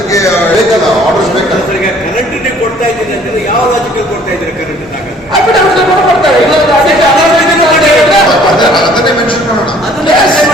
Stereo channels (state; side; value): normal; both; correlation 0.56